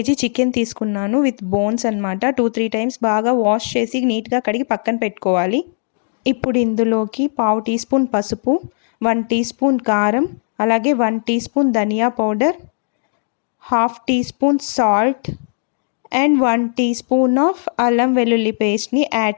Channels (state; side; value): silent; right; digital silence